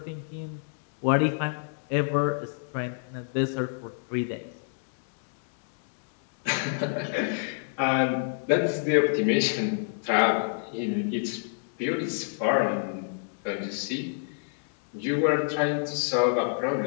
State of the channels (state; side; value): silent; right; digital silence